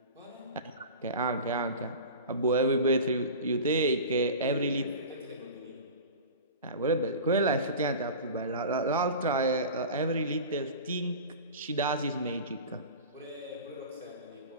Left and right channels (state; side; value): inverted; both; correlation -0.34